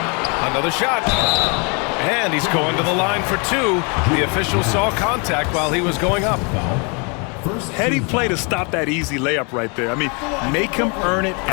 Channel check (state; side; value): quieter; right; 33.5 dB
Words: Another shot. And he's going to the line for 2. The official saw contact while he was going up. Heady play to stop that easy layup right there. I mean, make him earn it